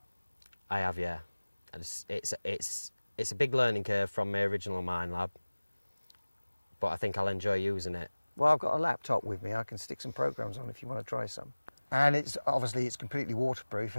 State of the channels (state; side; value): inverted; both; correlation -1.00